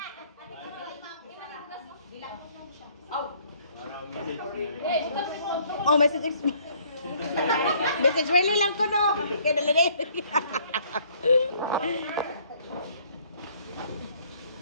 Oh, message. Message really lang ko no. Kaya dala na yun.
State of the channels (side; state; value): both; inverted; correlation -0.61